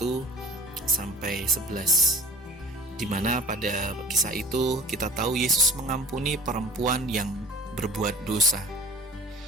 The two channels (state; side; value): normal; both; correlation 0.42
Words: sampai 11. Di mana pada kisah itu kita tahu Yesus mengampuni perempuan yang berbuat dosa.